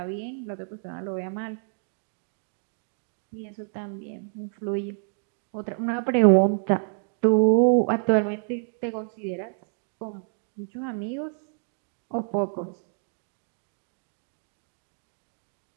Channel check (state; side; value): silent; left; 56 dB below the other